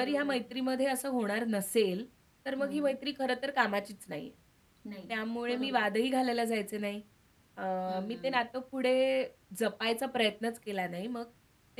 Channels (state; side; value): identical; both; correlation 1.00